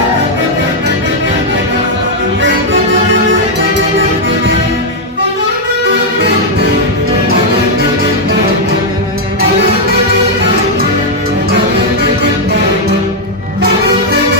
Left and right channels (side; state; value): both; normal; correlation -0.02